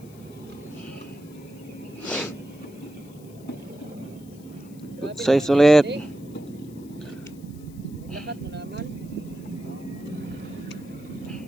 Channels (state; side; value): noise; left; hiss, 25 dB below the sound